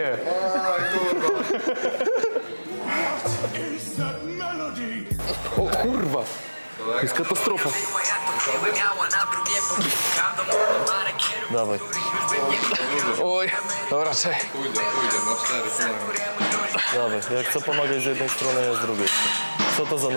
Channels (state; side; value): inverted; both; correlation -1.00